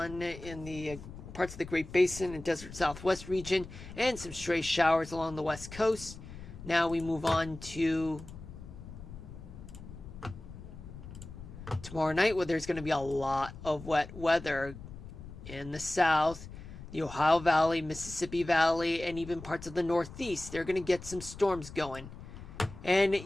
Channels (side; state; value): left; noise; rumble, 14 dB below the sound